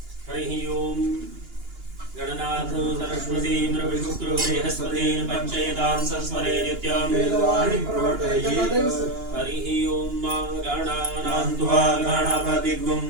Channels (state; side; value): late; left; 2.9 ms